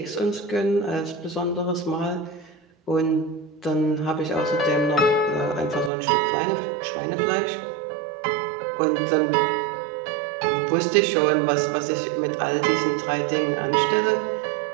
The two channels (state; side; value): drops out; left; at 5.9 s